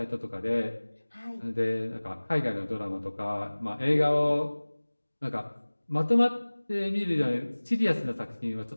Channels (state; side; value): inverted; both; correlation -1.00